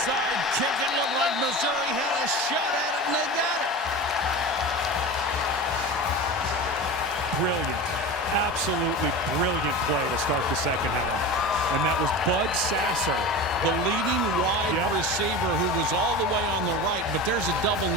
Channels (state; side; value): normal; both; correlation 0.30